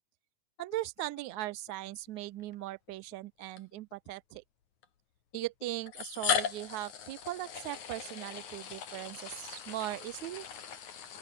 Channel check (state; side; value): late; right; 9.5 ms